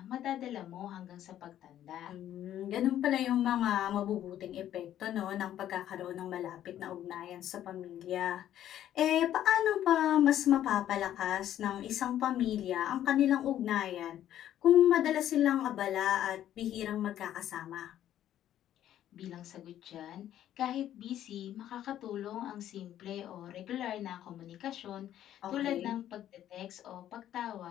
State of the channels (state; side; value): quieter; right; 11.6 dB